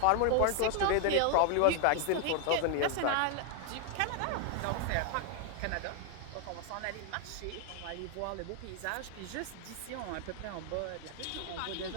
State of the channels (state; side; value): different; both; correlation 0.00